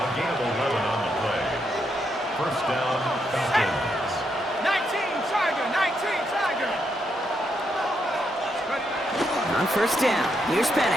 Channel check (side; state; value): both; normal; correlation 0.79